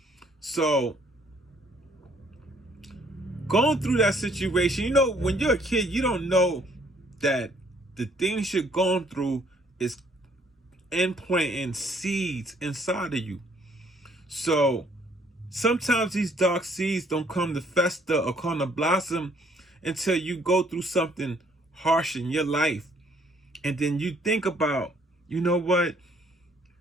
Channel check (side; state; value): both; normal; correlation 0.64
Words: So going through that situation, you know, when you're a kid, you don't know that the things you're going through is implanting seeds inside of you. So sometimes these dark seeds don't come to fester or come to blossom until you go through something harsh in your life. And then you think about, you know what?